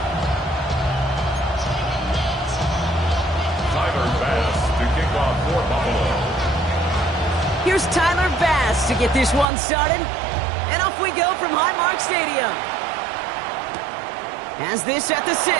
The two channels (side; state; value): left; drops out; at 9.5 s